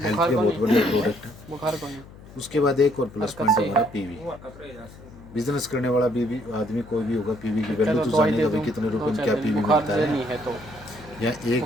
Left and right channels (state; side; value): noise; left; hum, 19 dB below the sound